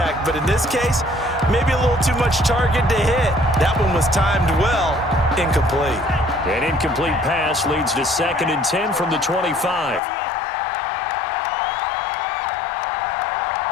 but in this case, maybe a little too much target to hit. That one was timed well, incomplete. An incomplete pass leads to 2nd and 10 from the 25.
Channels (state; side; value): drops out; right; at 10.0 s